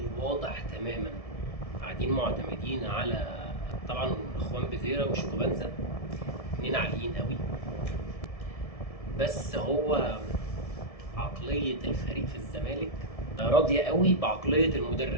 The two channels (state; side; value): late; right; 1.7 ms